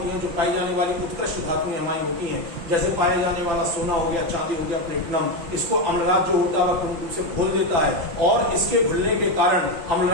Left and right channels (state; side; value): late; left; 6.0 ms